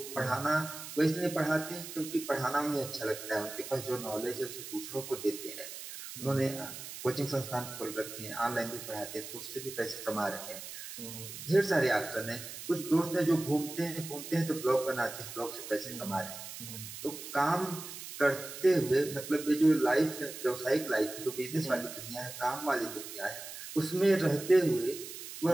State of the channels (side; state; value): right; noise; hiss, 10 dB below the sound